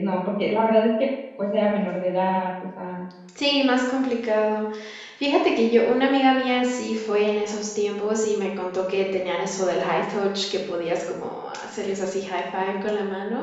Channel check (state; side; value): identical; both; correlation 1.00